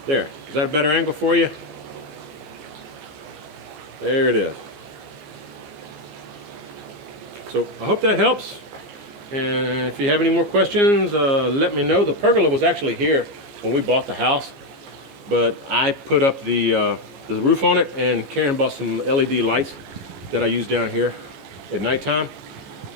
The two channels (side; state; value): left; late; 15 ms